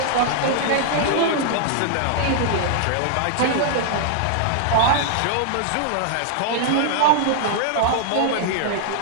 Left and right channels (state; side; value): different; both; correlation -0.01